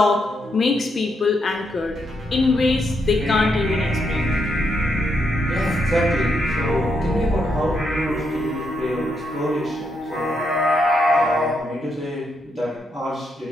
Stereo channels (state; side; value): normal; both; correlation 0.79